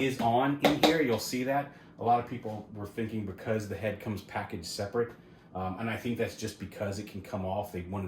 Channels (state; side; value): identical; both; correlation 1.00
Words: on in here. You'll see that. A lot of people were thinking because the head comes packaged separate, and I think that's just because it can come off. They